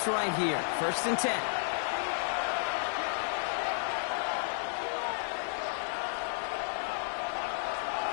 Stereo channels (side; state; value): right; silent; digital silence